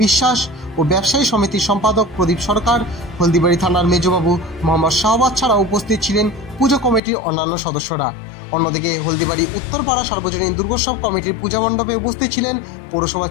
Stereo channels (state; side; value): drops out; right; at 7.0 s